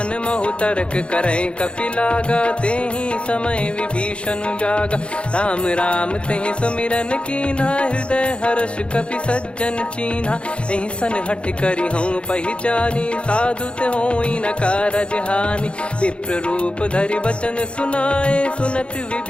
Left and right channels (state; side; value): late; right; 0.058 ms